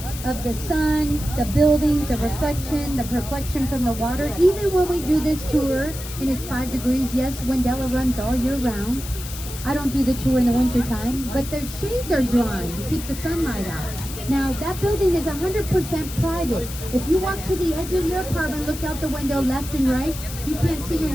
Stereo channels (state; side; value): noise; left; hiss, 11 dB below the sound